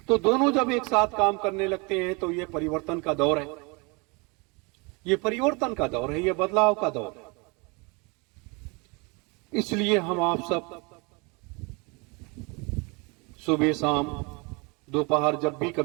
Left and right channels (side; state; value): left; quieter; 29.5 dB